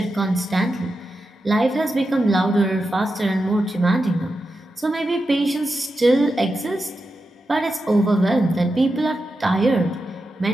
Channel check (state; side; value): normal; both; correlation 0.89